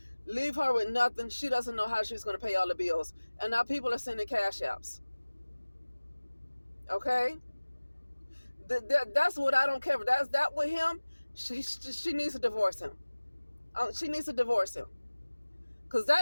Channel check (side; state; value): both; inverted; correlation -1.00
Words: leave her with nothing. She doesn't know how she's going to pay all the bills. And now people are sending cash apps. Okay? That's what I don't care for. That's that with him. She needs to divorce him. She needs to divorce him. Because